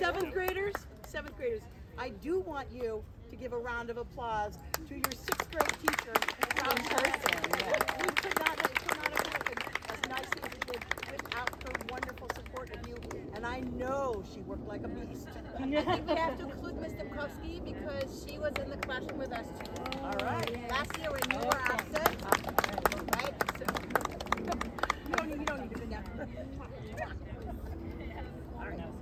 7th graders, I do want you to give a round of applause to your 6th grade teacher. In person, We could not have happened as nicely as it did without her wonderful support of you. And I know she worked like a beast. I think we have to include Ms. Demkowski because she was in the classroom with us too. All right. Last year when you were absent, right? So, You don't need to do that. All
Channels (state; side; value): identical; both; correlation 1.00